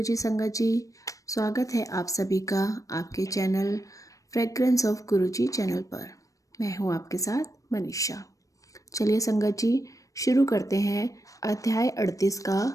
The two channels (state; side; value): late; right; 0.16 ms